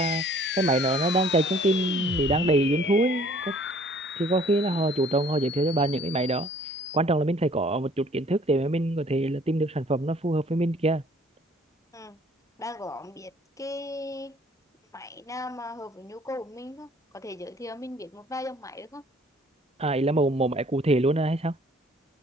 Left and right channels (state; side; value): normal; both; correlation 0.56